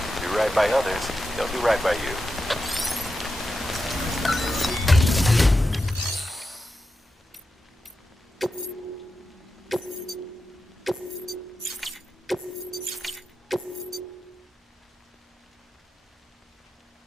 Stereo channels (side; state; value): both; normal; correlation 0.90